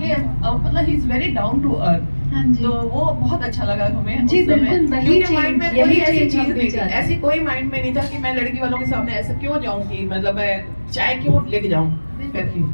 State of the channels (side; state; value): both; inverted; correlation -1.00